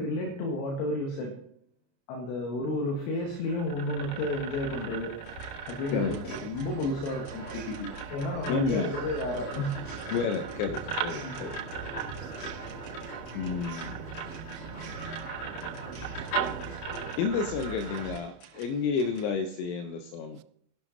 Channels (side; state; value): right; late; 29 ms